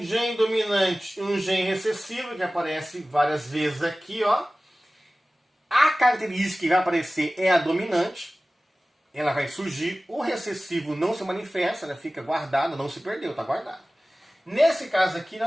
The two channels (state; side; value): normal; both; correlation 0.97